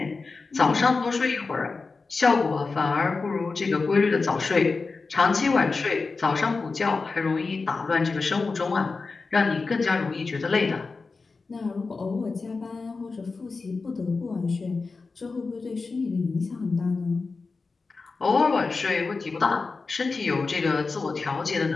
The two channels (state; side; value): quieter; right; 4.2 dB